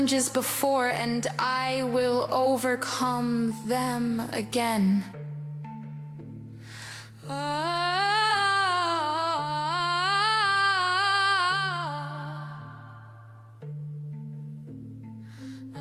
before, and I will overcome them again.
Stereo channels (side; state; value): both; identical; correlation 1.00